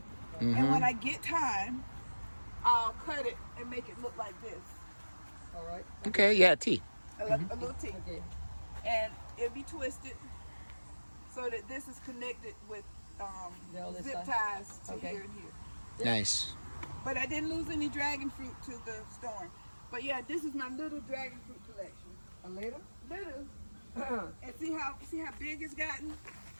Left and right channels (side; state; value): both; inverted; correlation -1.00